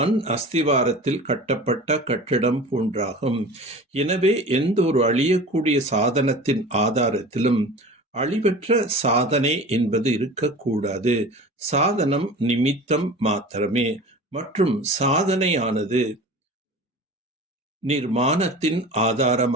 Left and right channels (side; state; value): both; normal; correlation 0.37